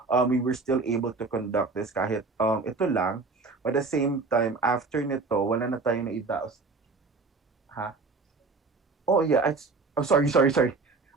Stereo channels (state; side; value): quieter; left; 4.0 dB